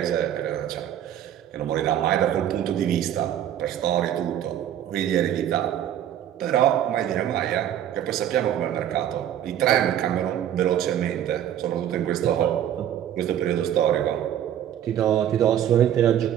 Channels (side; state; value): left; quieter; 10.7 dB